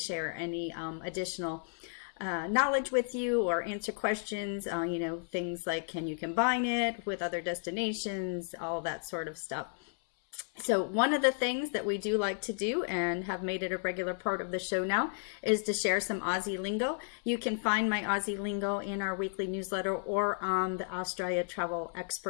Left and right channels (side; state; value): right; silent; 56 dB below the other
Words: any additional knowledge with you or answer questions, things like can you combine it with other destinations, all that sort of stuff. So one of the things that we do like to do and have made it a regular part of the show now is to share some Aussie lingo. You can find my Aussie lingo in our weekly newsletter or on the Australia Travel